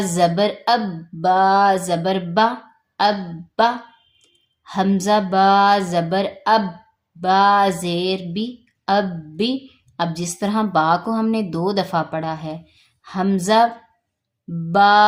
زبر اب، با زبر با، اب با۔ حمزہ با زبر اب، با زیر بی، اب بی۔ اب جس طرح با کو ہم نے 2 دفعہ پڑھا ہے، حمزہ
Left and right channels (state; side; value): identical; both; correlation 1.00